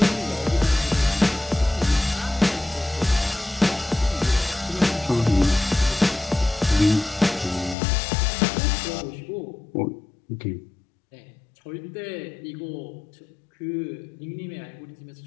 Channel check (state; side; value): drops out; right; at 7.8 s